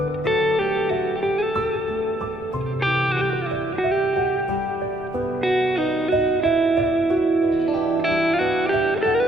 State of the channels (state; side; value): noise; left; rumble, 28 dB below the sound